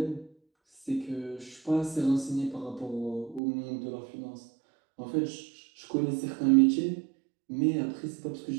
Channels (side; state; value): left; drops out; at 3.4 s